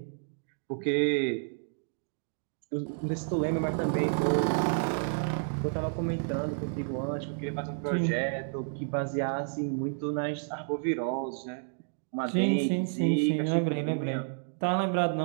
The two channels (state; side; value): silent; left; digital silence